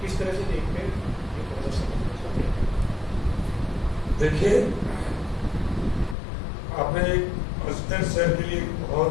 किस तरह से देखते हैं? देखिए, आपने अजमेर शहर के लिए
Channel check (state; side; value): drops out; right; at 6.2 s